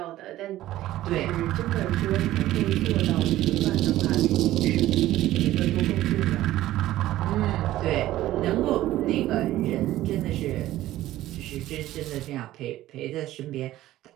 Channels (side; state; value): left; quieter; 14.9 dB